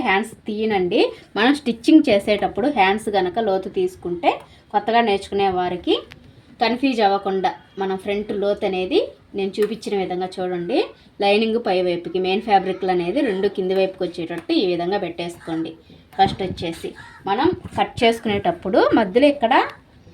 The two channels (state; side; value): identical; both; correlation 1.00